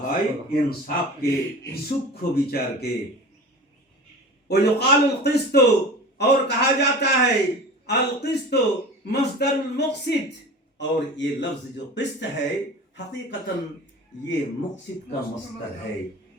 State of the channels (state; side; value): normal; both; correlation 0.36